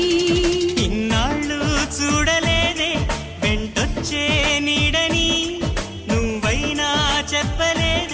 ఇన్నాళ్ళు చూడలేదే వెంటొచ్చే నీడని నువ్వైనా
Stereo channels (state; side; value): identical; both; correlation 1.00